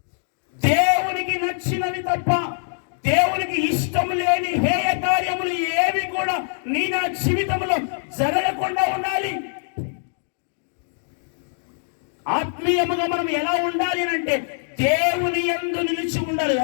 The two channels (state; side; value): silent; right; digital silence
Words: దేవునికి నచ్చినవి తప్ప దేవునికి ఇష్టం లేని హేయ కార్యములు ఏవి కూడా నీ నా జీవితంలో జరగకుండా ఉండాలి. ఆత్మీయముగా మనం ఎలా ఉండాలి అంటే దేవుని యందు నిలిచి ఉండాలి.